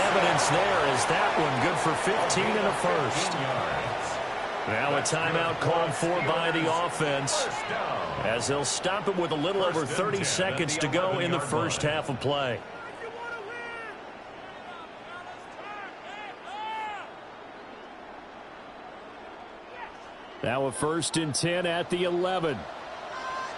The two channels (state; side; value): identical; both; correlation 1.00